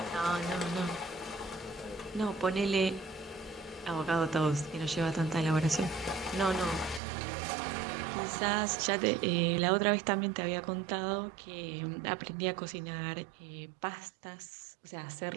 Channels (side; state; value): left; drops out; at 7.0 s